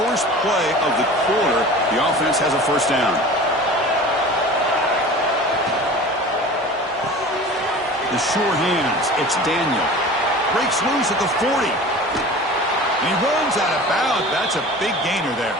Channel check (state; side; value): normal; both; correlation 0.39